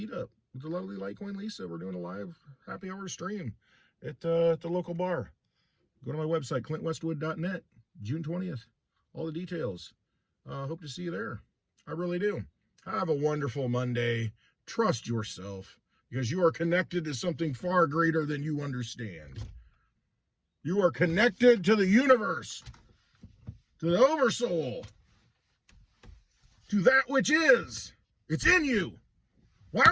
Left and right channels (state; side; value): identical; both; correlation 1.00